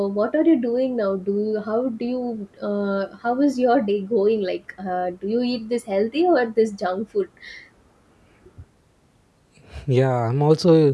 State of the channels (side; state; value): both; identical; correlation 1.00